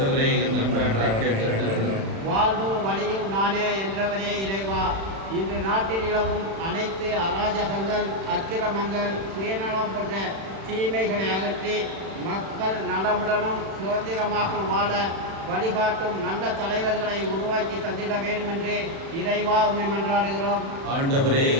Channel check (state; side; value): late; left; 36 ms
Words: எங்கள் மன்றாட்டை கேட்டருளும். வாழ்வும் வழியும் நானே என்றவரே இறைவா, இன்று நாட்டில் நிலவும் அனைத்து அராஜகங்கள், அக்கிரமங்கள், சுயநலம் போன்ற தீமைகளை அகற்றி மக்கள் நலமுடனும் சுதந்திரமாக வாழ வழிகாட்டும் நல்ல தலைவர்களை உருவாக்கி தந்திட வேண்டும் என்று இறைவா உம்மை மன்றாடுகிறோம். ஆண்டவரே